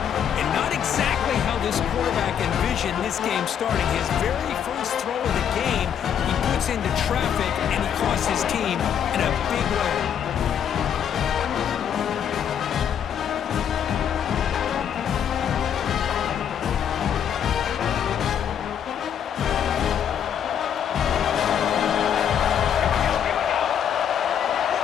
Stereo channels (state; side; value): quieter; right; 8.8 dB